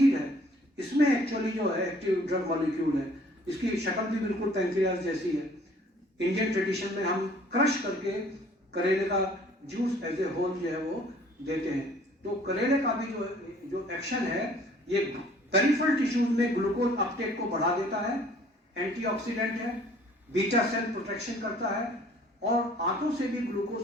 है इसमें एक्चुअली जो है एक्टिव ड्रग मॉलिक्यूल है। इसकी शक्ल भी बिल्कुल पैंक्रियाज जैसी है। इंडियन ट्रेडिशन में हम क्रश करके करेले का जूस एज ए होल जो है वो देते हैं। तो करेले का भी जो एक्शन है ये पेरिफेरल टिश्यूज में ग्लूकोज अपटेक को बढ़ा देता है, एंटीऑक्सीडेंट है, बीटा सेल प्रोटेक्शन करता है और आंतों से भी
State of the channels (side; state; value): both; normal; correlation 0.55